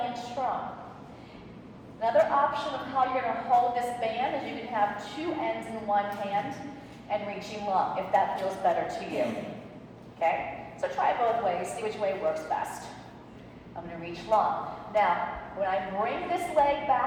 in strong. Another option of how you're going to hold this band is you can have 2 ends in one hand and reaching long, if that feels better to you. Okay? So try both ways. See which way works best. I'm going to reach long. Now, when I bring this leg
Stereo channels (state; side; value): identical; both; correlation 1.00